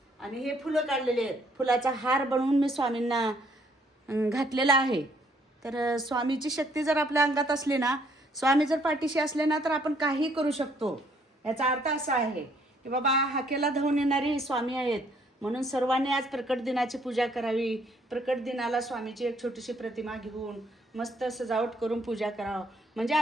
आणि हे फुलं काढलेले आहेत। फुलाचा हार बनवून मी स्वामींना घातलेला आहे। तर स्वामीची शक्ती जर आपल्या अंगात असली ना, स्वामी जर पाठीशी असले ना, तर आपण काही करू शकतो। याचा अर्थ असा आहे की बाबा हाकेला धावून येणारी स्वामी आहेत, म्हणून सर्वांनी आज प्रकट दिनाची पूजा करावी। प्रकट दिनाला स्वामीची एक छोटीशी प्रतिमा घेऊन मस्त सजावट करून पूजा करावं, म्हणजे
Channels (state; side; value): normal; both; correlation 0.66